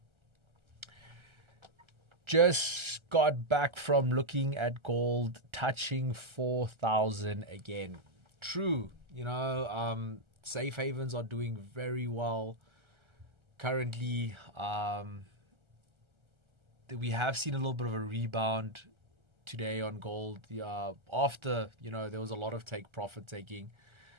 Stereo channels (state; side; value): late; left; 1.3 ms